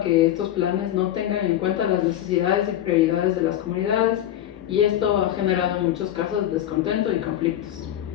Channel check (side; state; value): right; quieter; 12.0 dB